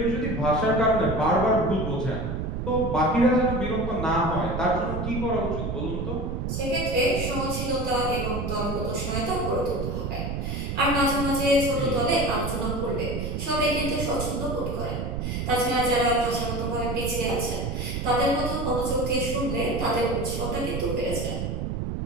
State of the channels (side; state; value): right; noise; rumble, 3 dB below the sound